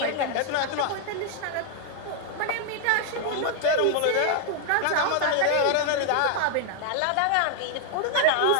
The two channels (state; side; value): different; both; correlation 0.00